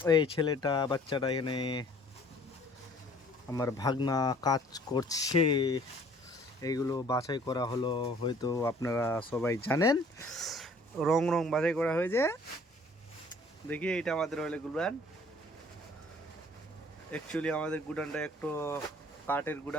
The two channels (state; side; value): normal; both; correlation 0.55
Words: এই ছেলেটা বাচ্চাটা এখানে আমার ভাগনা কাজ করছে। এইগুলো বাছাই করা হলো, হয়তো আপনারা সবাই জানেন। রং রং বাছাই করা হয়েছে। দেখি এটা আমাদের হলে গুড়ান। অ্যাকচুয়ালি আমাদের গুডানটা একটু কাঠের